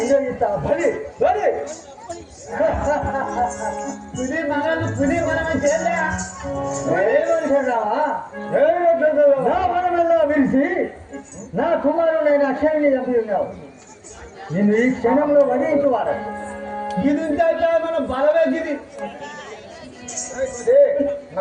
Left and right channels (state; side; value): identical; both; correlation 1.00